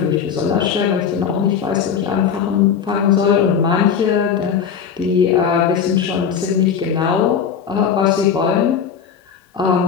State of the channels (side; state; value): right; quieter; 7.3 dB